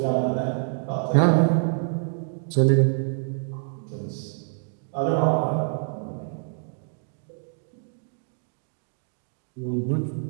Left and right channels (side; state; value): left; silent; digital silence